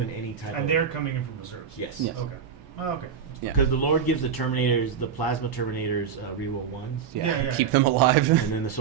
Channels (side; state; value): left; quieter; 7.3 dB